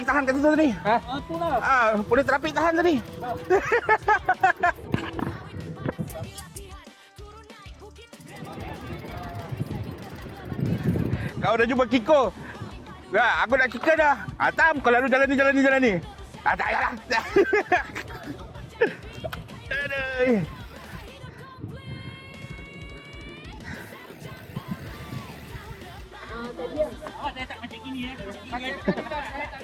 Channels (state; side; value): identical; both; correlation 1.00